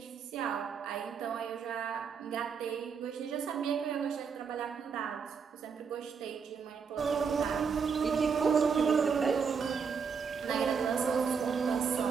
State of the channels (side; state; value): left; quieter; 6.1 dB